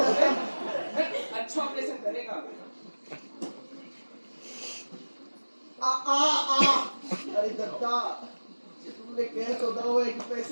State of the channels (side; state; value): both; inverted; correlation -1.00